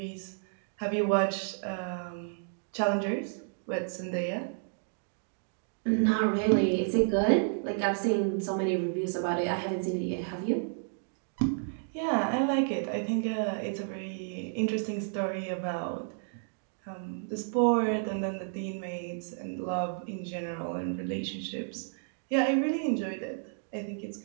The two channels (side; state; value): left; silent; digital silence